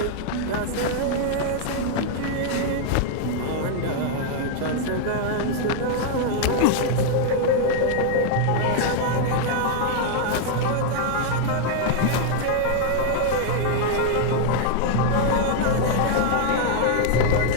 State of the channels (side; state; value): both; different; correlation 0.00